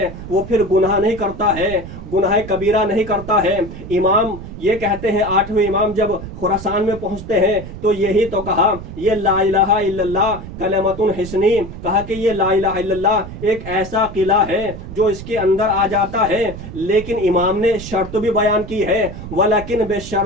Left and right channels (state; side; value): noise; right; rumble, 11 dB below the sound